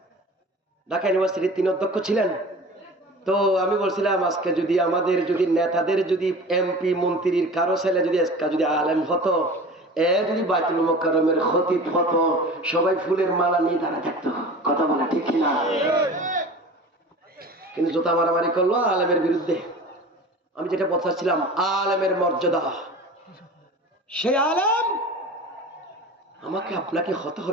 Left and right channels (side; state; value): both; normal; correlation 0.38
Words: ঢাকা ইউনিভার্সিটির 3 অধ্যক্ষ ছিলেন। তো আমি বলছিলাম, আজকে যদি আমাদের যদি নেতাদের যদি এমপি মন্ত্রীর কারো ছেলে যদি আলেম হতো, যদি বাইতুল মুকাররমের খতিব হতো, সবাই ফুলের মালা নিয়ে দাঁড়া থাকতো। কথা বলে ঠিক কিনা? কিন্তু জোতা মারামারি করলো আলেমের বিরুদ্ধে। আমি যেটা বলছিলাম, আলেমের মর্যাদা, সেই আলেম আমাকে আপনাকে হতে